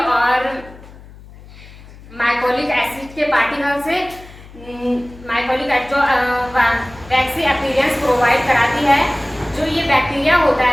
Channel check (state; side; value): noise; left; hum, 20 dB below the sound